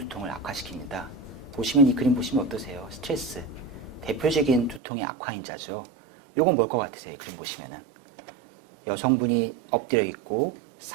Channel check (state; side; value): drops out; left; at 4.8 s